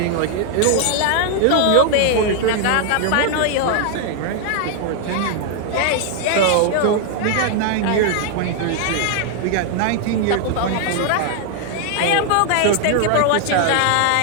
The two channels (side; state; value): both; different; correlation 0.00